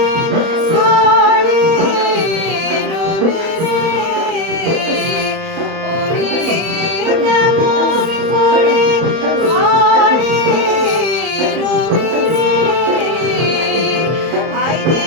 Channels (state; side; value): late; left; 31 ms